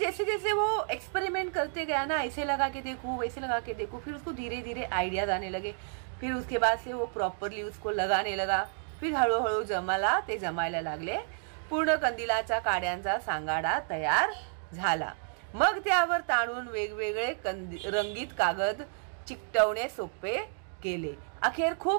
जैसे वो एक्सपेरिमेंट करते गया ना, ऐसे लगा के देखो, वैसे लगा के देखो, फिर उसको धीरे धीरे आइडियाज आने लगे। फिर उसके बाद से वो प्रॉपरली उसको लगाने लगा। फिर हळूहळू जमायला लागले। पूर्ण कंदिलाच्या काड्यांचा सांगाडा तयार झाला। मग त्यावर ताणून वेगवेगळे रंगीत कागद चिकटवणे सोपे केले। अखेर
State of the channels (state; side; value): silent; left; 57 dB below the other